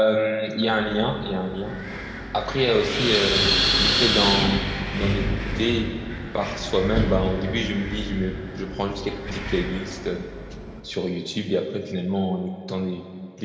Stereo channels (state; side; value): identical; both; correlation 1.00